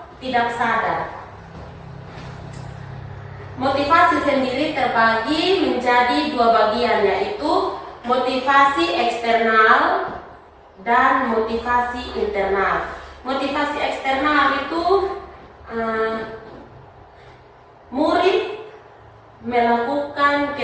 tidak sadar. Motivasi sendiri terbagi menjadi dua bagian, yaitu motivasi eksternal dan motivasi internal. Motivasi eksternal itu murid melakukan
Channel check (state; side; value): identical; both; correlation 1.00